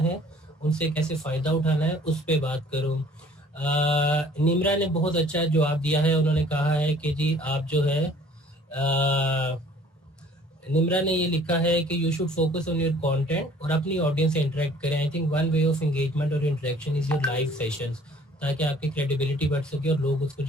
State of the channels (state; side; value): normal; both; correlation 0.54